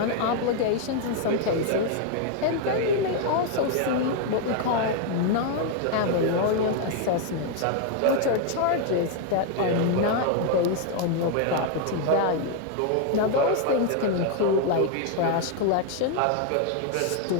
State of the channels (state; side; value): different; both; correlation 0.00